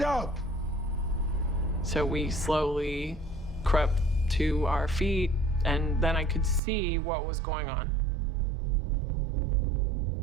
up! So we slowly crept to our feet, and then I could see what was going on.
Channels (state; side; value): drops out; left; at 6.6 s